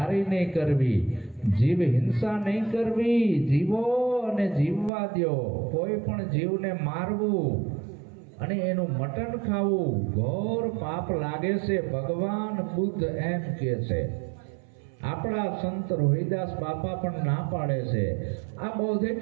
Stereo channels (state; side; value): drops out; left; at 4.9 s